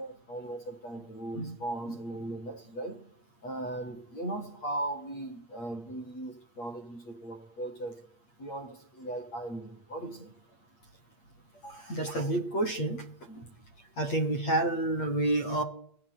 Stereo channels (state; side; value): late; right; 8.5 ms